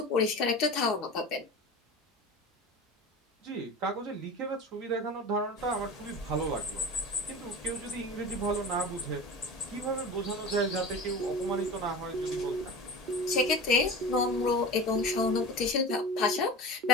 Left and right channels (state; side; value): normal; both; correlation 0.32